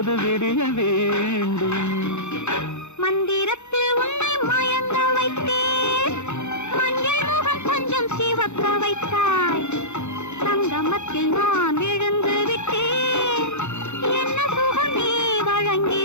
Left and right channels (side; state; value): right; late; 0.83 ms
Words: விடிய வேண்டும். மந்திரத்தில் உன்னை மயங்க வைத்தேன், மஞ்சள் முகம் கொஞ்சம் சிவக்க வைத்தாய், சங்கமத்தில் நான் விழுந்து விட்டேன், என்ன சுகம் நீ வழங்கி